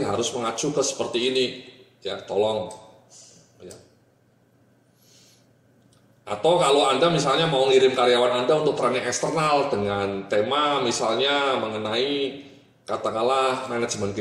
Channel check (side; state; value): both; identical; correlation 1.00